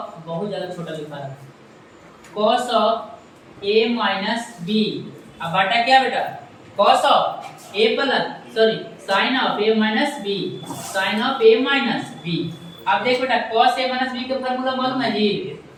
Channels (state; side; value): identical; both; correlation 1.00